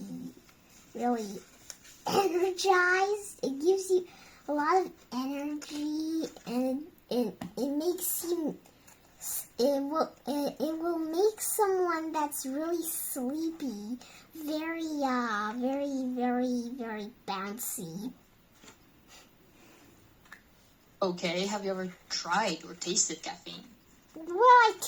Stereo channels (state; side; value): identical; both; correlation 1.00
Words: really energized. It gives you a lot of energy, and it makes you. It will make someone that's really sleepy very bouncy. Okay, have you ever tried or tasted caffeine? Well, I